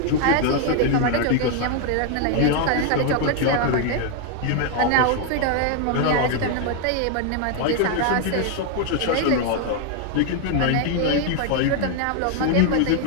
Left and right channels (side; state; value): both; different; correlation 0.00